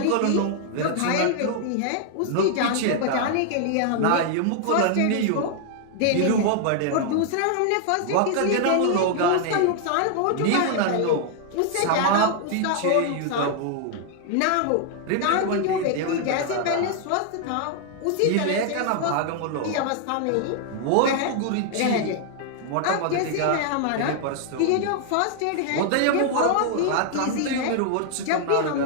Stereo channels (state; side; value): different; both; correlation 0.00